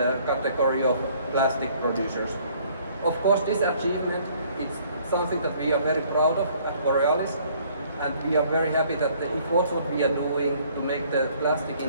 category of plastic producers. Of course, this achievement is something that we are very proud of at Borealis, and we are very happy that the efforts what we are doing to make the plastic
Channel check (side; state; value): both; inverted; correlation -0.60